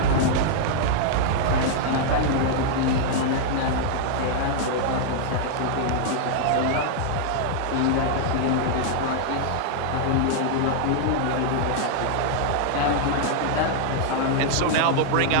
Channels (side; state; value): both; different; correlation -0.01